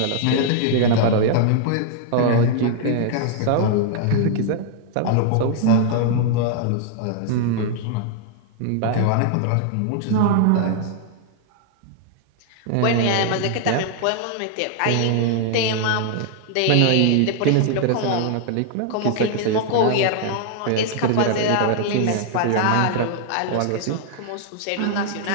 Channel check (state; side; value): different; both; correlation 0.00